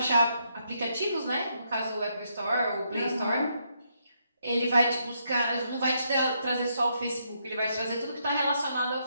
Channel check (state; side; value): inverted; both; correlation -0.77